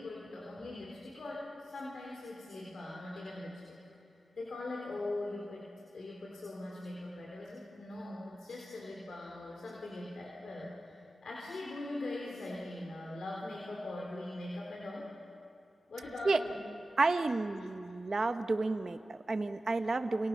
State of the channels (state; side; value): normal; both; correlation 0.94